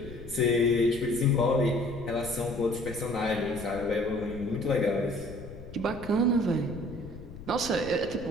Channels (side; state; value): left; noise; rumble, 14 dB below the sound